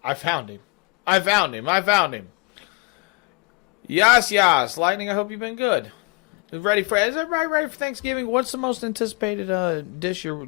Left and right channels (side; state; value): right; quieter; 27.0 dB